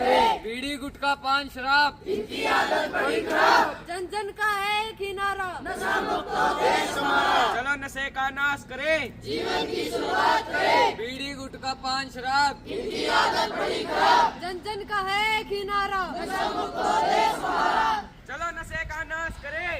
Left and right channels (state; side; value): identical; both; correlation 1.00